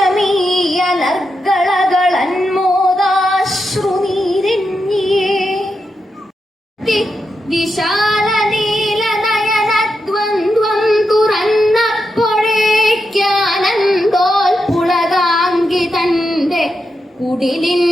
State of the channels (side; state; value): both; normal; correlation 0.86